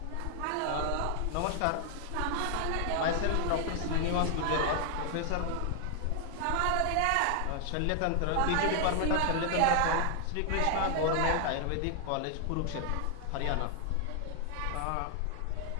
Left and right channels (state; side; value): different; both; correlation 0.00